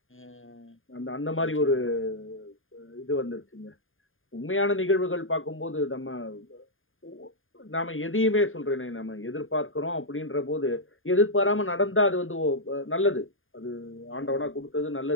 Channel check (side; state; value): right; late; 0.59 ms